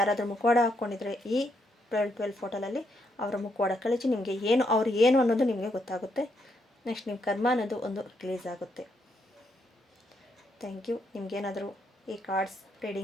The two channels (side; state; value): both; normal; correlation 0.77